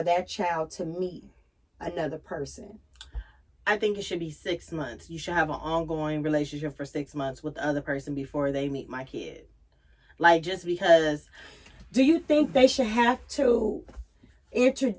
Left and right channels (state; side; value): identical; both; correlation 1.00